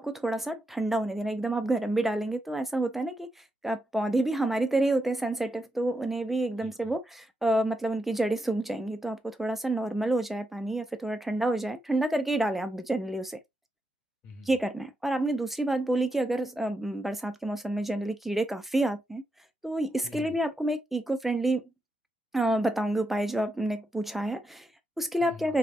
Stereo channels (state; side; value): normal; both; correlation 0.85